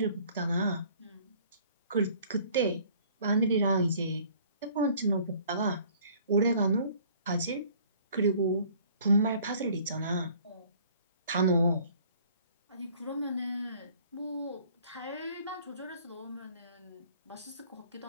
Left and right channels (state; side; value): inverted; both; correlation -0.55